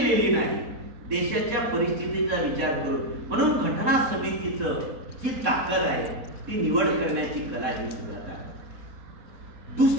नाही, देशाच्या परिस्थितीचा विचार करून. म्हणून घटना समितीचं जी ताकद आहे ती निवड करण्याची कला ही सुद्धा.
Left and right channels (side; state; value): left; late; 4.1 ms